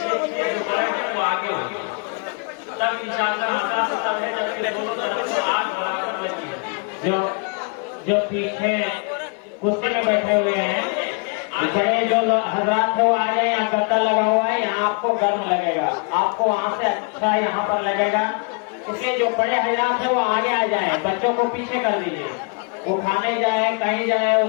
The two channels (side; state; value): right; quieter; 35.5 dB